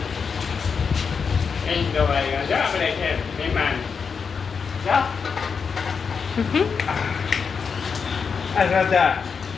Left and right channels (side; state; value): right; quieter; 5.8 dB